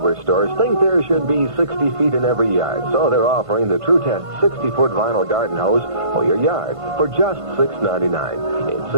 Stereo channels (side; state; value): left; late; 1.5 ms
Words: stores think there should be 60 feet in every yard, so they're offering the True Test 60-foot vinyl garden hose for your yard for just $6.99. It's